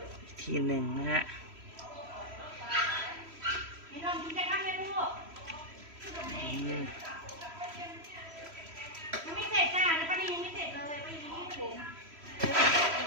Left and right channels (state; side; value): late; left; 3.1 ms